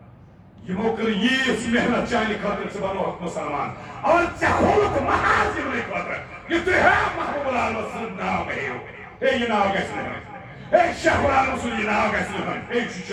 یِمو کٔر ییٖژ محنت چانہِ خٲطرٕ ژٕ بنووکھ مُسلمان اور ژےٚ کھولُکھ محاذ یِمنٕے خٲطرٕ یہِ تُہۍ ہے محبوب العالم سُنٛد ناو مےٚ ہیٚیِو ہے یہِ ناو گژھِ نہٕ ہیوٚن ہے شیخ العالم سُنٛد یہِ ناو گژھِ نہٕ ہیوٚن ہے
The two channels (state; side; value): identical; both; correlation 1.00